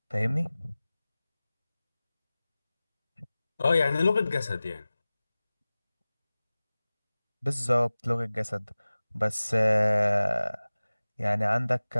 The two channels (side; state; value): both; inverted; correlation -0.98